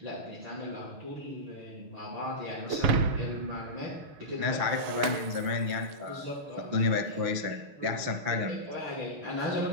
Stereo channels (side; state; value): left; late; 6.5 ms